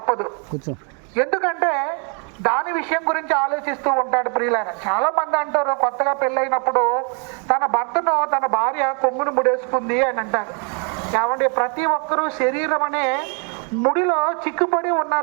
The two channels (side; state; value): left; quieter; 38.2 dB